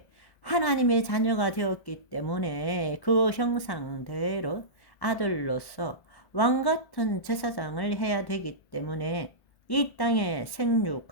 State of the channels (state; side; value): late; right; 1.1 ms